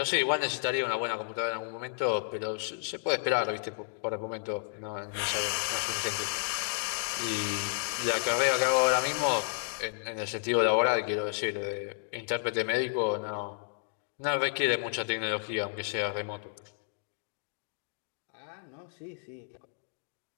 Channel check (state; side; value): silent; right; digital silence